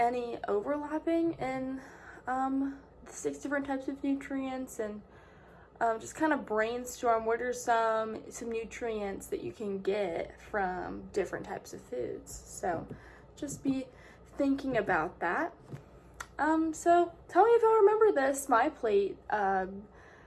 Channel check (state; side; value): identical; both; correlation 1.00